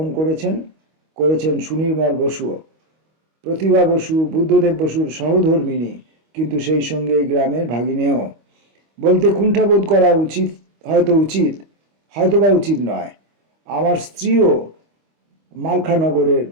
করেছেন সুনির্মল বসুও। প্রতিভা বসু বুদ্ধদেব বসুর সহধর্মিণী, কিন্তু সেই সঙ্গে এই গ্রামের ভাগিনেও। বলতে কুণ্ঠাবোধ করা উচিত, হয়তোবা উচিত নয়। আমার স্ত্রীও মালখানগরের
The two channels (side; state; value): left; late; 25 ms